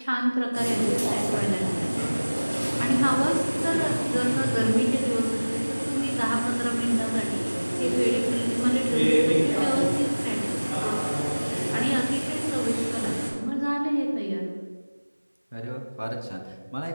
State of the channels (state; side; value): inverted; both; correlation -1.00